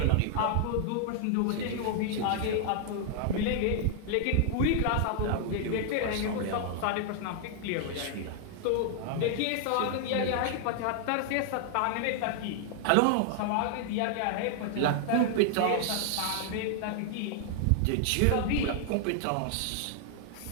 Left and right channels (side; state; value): both; different; correlation 0.00